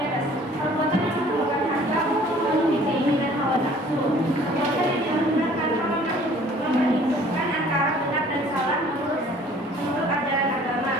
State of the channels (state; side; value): normal; both; correlation 0.53